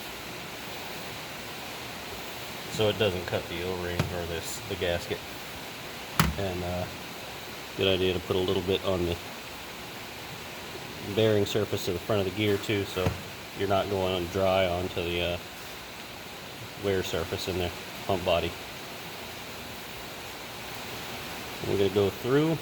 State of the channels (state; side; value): identical; both; correlation 1.00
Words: So it doesn't cut the O-ring or the gasket. And good idea to put a little bit on the bearing surface of the front of the gear too, so you're not going on dry onto the wear surface in the pump body. We're going to go through,